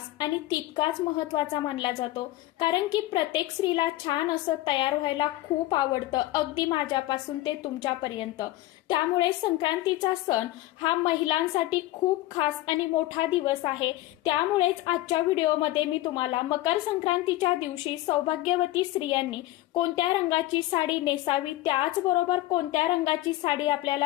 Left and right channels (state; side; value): quieter; right; 16.5 dB